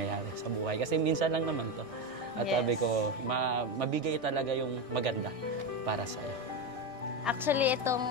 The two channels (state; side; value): late; left; 1.6 ms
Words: sa buhay. Kasi minsan lang naman to. At sabi ko, mabigay talaga yung maganda para sa'yo. Actually,